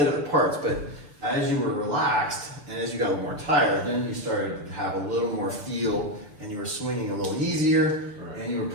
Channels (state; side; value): late; left; 6.8 ms